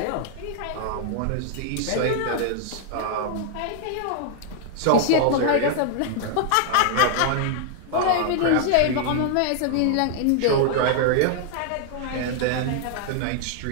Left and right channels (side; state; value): both; different; correlation -0.01